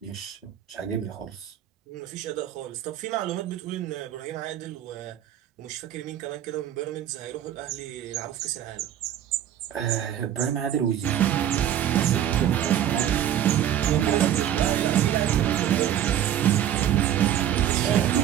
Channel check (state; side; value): quieter; left; 10.8 dB